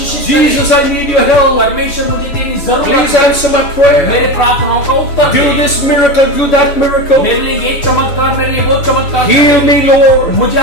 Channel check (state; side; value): late; right; 6.8 ms